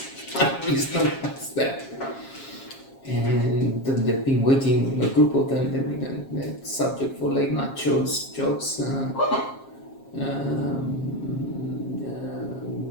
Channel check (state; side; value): late; right; 7.4 ms